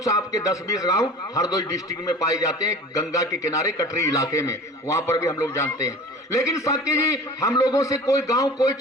आपके 10-20 गांव हरदोई डिस्ट्रिक्ट में पाए जाते हैं, गंगा के किनारे कटरी इलाके में, वहां पर भी हम लोग जानते हैं। लेकिन साकी जी, हम लोगों से कोई गांव, कोई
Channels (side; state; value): both; normal; correlation 0.39